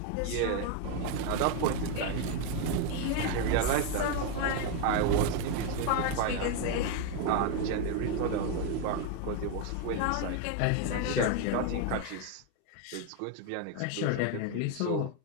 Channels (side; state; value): both; different; correlation 0.01